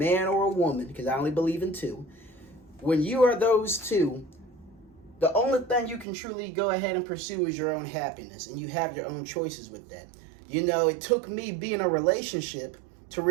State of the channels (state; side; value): drops out; left; at 6.1 s